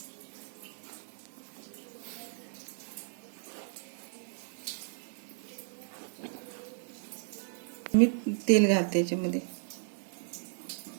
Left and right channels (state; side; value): silent; left; digital silence